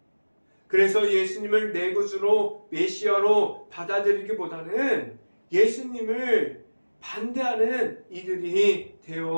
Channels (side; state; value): both; inverted; correlation -1.00